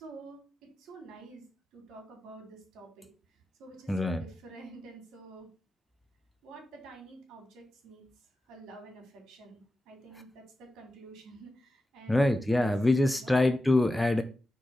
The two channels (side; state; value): both; normal; correlation 0.93